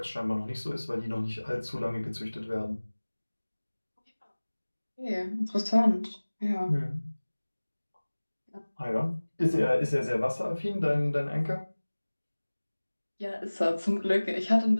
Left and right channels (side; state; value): both; inverted; correlation -1.00